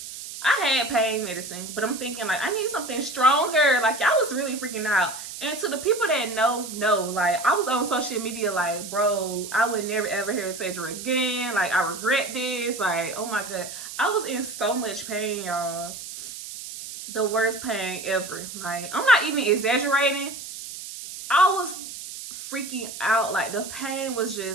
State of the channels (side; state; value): right; noise; hiss, 10 dB below the sound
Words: I had pain medicine, but I'm thinking like I need something stronger. Like I was really freaking out. And to the people that know, like I was on social media like, bro, I would never ever hear surgery again. Like I regret this. Like, oh my God. I was in so much pain, y'all. The worst pain ever. Like, I'm not even exaggerating. I was freaking out. Like the pain was